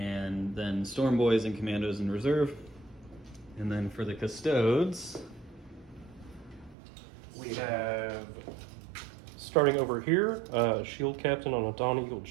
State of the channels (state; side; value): drops out; left; at 6.8 s